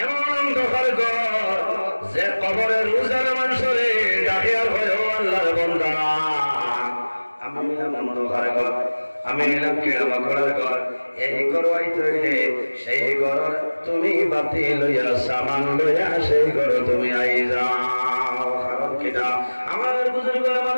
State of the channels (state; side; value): inverted; both; correlation -1.00